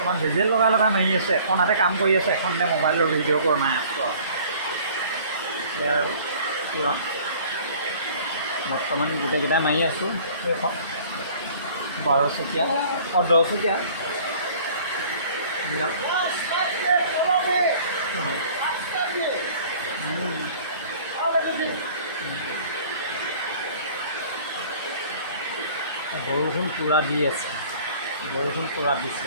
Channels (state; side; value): inverted; both; correlation -0.50